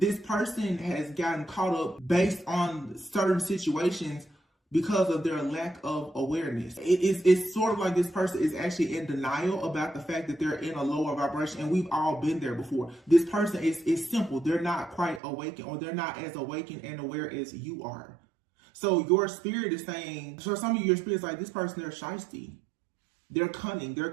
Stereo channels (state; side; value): drops out; left; at 15.2 s